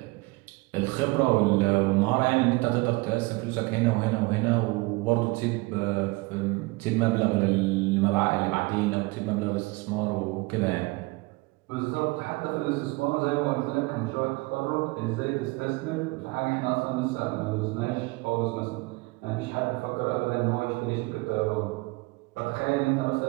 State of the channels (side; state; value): left; quieter; 24.6 dB